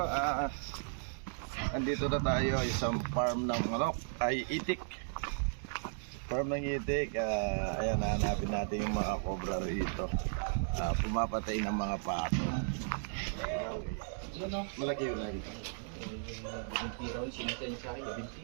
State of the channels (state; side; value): silent; left; digital silence